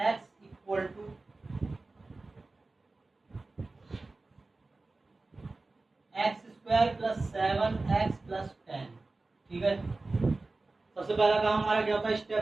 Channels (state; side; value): quieter; left; 3.4 dB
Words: x equal to x square plus 7x plus 10। ठीक है, सबसे पहला काम हमारा क्या होता है,